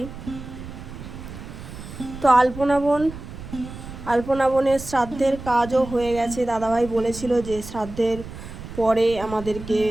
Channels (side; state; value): right; noise; rumble, 12 dB below the sound